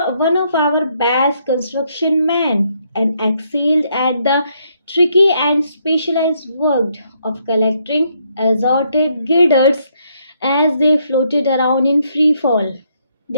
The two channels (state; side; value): inverted; both; correlation -0.73